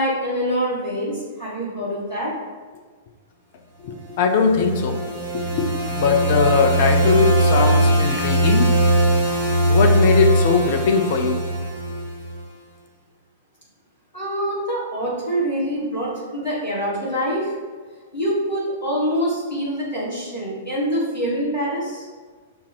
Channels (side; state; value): both; inverted; correlation -0.51